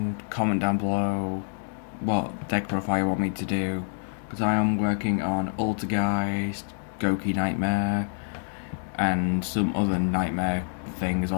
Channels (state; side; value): silent; right; digital silence